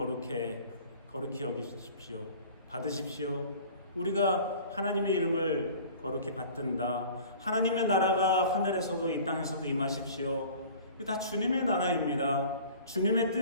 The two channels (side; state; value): both; inverted; correlation -0.44